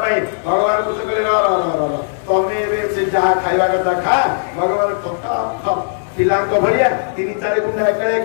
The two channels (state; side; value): silent; right; 58 dB below the other